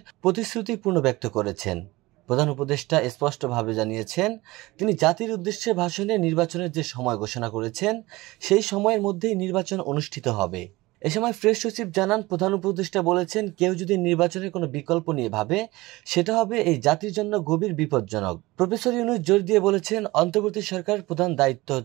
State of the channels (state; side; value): quieter; left; 20.5 dB